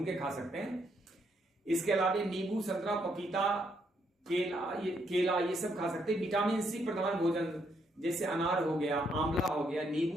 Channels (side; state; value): both; normal; correlation 0.75